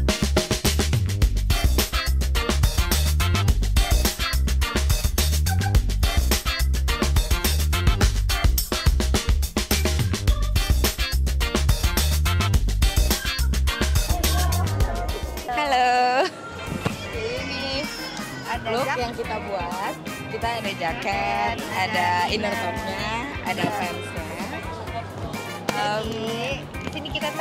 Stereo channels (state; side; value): identical; both; correlation 1.00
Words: Look yang kita buat, kita ada jaket, ada inner topnya, ada fansnya. Di sini kita